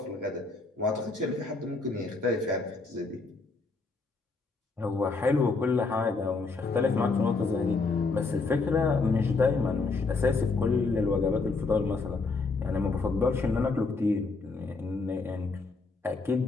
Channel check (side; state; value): right; quieter; 3.9 dB